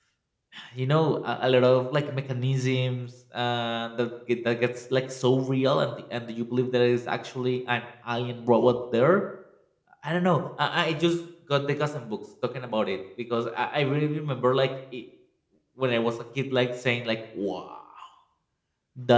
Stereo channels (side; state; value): both; identical; correlation 1.00